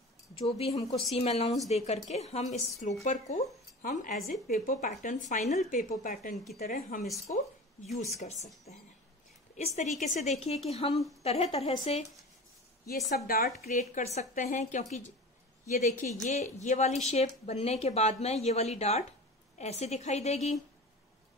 जो भी हमको सीम अलाउंस दे करके हम इस स्लोपर को हम as a paper pattern, final paper pattern की तरह हम इसको यूज कर सकते हैं। इस तरीके से देखिए कि हम तरह तरह से ये सब डार्ट क्रिएट कर सकते हैं, क्योंकि ये देखिए, ये वाली शेप बनने के बाद में ये वाली डार्ट ऐसे दिखाई देगी।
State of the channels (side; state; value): both; normal; correlation 0.34